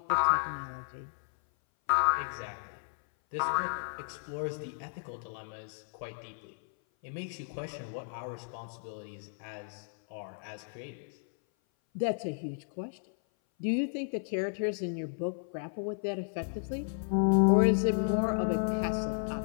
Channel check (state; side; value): silent; right; 56 dB below the other